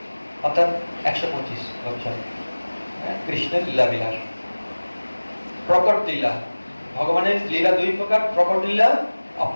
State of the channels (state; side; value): inverted; both; correlation -1.00